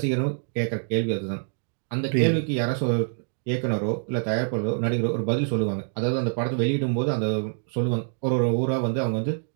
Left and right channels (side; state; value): left; silent; digital silence